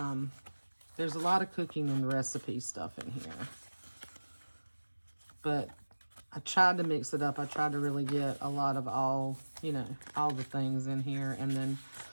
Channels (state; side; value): inverted; both; correlation -1.00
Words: there's a lot of cooking and recipe stuff in here. But I tried to mix it up. I tried to really get a lot of all, you know, all the things in here, and then